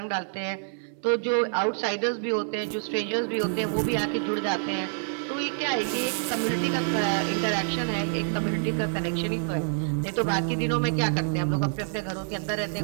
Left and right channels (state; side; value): silent; left; digital silence